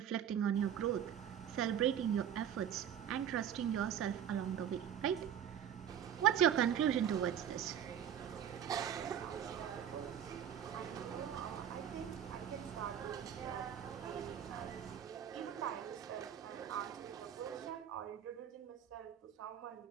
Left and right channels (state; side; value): quieter; left; 9.4 dB